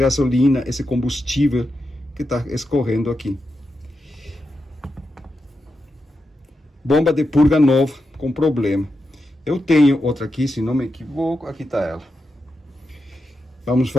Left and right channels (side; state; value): both; normal; correlation 0.87